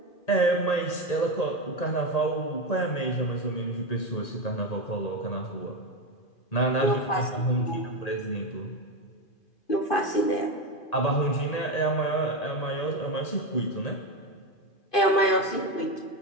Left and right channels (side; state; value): right; late; 2.5 ms